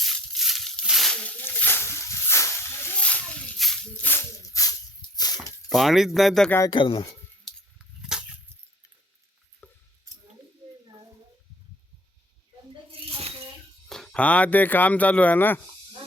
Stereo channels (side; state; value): both; normal; correlation 0.52